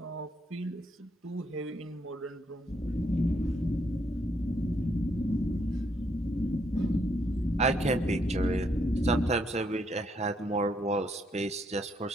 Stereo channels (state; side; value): normal; both; correlation 0.74